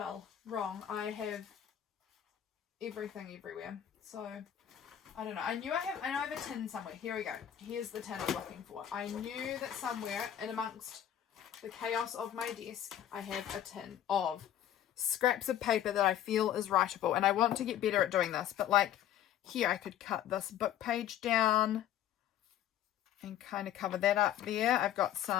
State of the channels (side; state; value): right; quieter; 11.0 dB